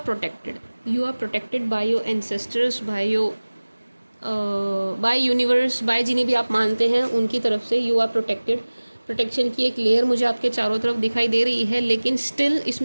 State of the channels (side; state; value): both; inverted; correlation -1.00